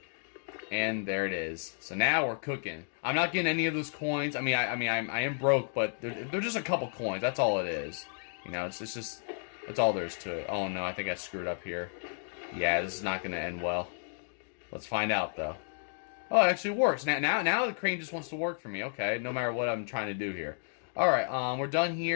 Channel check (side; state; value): right; silent; digital silence